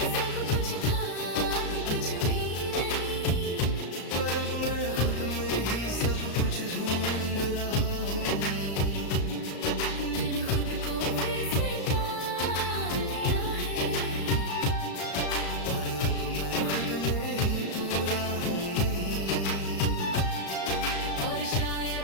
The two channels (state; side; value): late; right; 35 ms